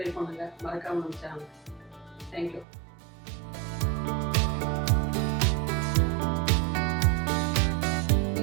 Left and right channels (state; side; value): drops out; left; at 2.7 s